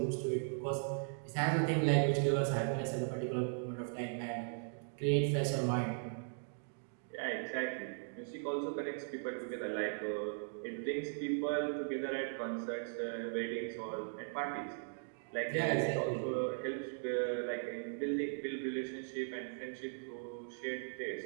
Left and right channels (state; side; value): silent; left; digital silence